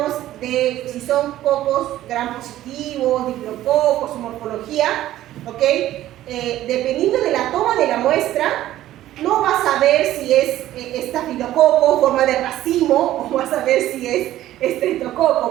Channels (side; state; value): left; quieter; 13.9 dB